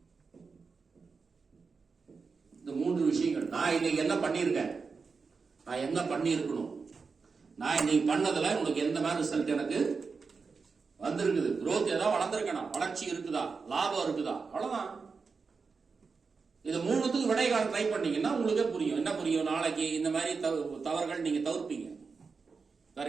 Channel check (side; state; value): left; quieter; 4.9 dB